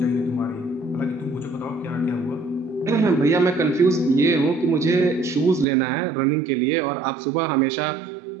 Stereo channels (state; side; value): drops out; left; at 5.7 s